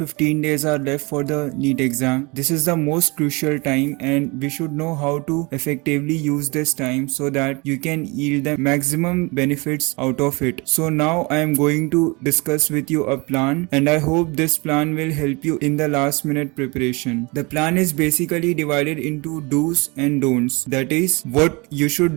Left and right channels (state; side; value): quieter; left; 27.3 dB